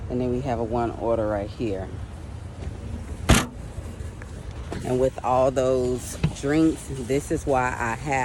And then we have a one order right here. And with all those drinks, this is why I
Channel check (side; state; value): both; identical; correlation 1.00